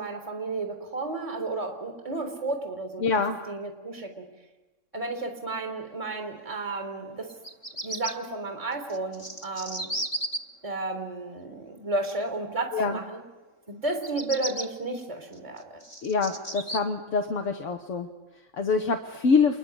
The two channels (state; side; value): late; right; 3.6 ms